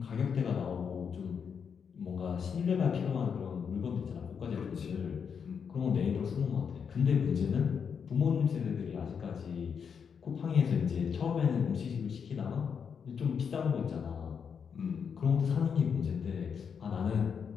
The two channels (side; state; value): right; quieter; 6.7 dB